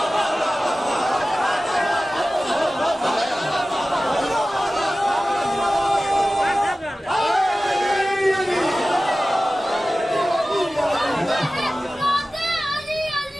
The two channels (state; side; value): normal; both; correlation 0.96